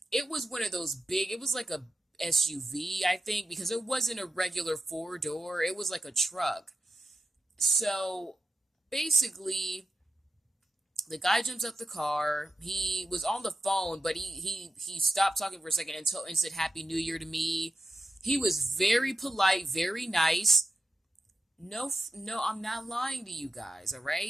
it was one of those big, it was like a SUV, I think, because it wasn't a regular four door, it was like a truck. So basically, the guy jumps out the car. He was on the phone, but he stopped talking for a second and said Happy New Year to me. He was very polite, very nice. No, I'm not lying to you guys, all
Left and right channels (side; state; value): both; normal; correlation 0.90